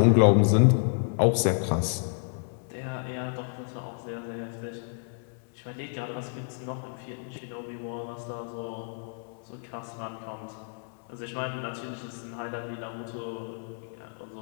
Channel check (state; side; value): silent; right; 55 dB below the other